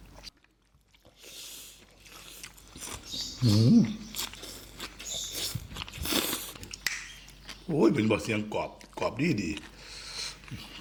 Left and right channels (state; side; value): identical; both; correlation 1.00